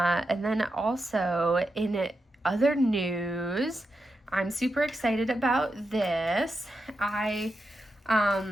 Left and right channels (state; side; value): normal; both; correlation 0.87